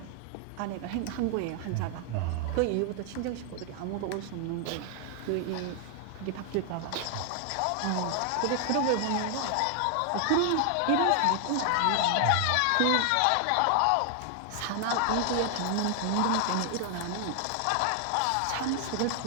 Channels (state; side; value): different; both; correlation 0.00